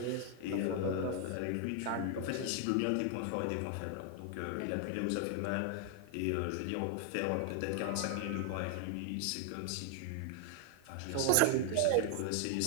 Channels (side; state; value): both; different; correlation 0.00